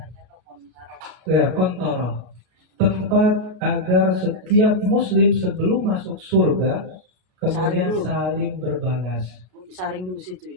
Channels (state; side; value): late; left; 33 ms